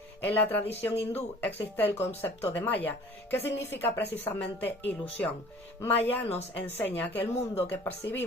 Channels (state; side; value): normal; both; correlation 0.49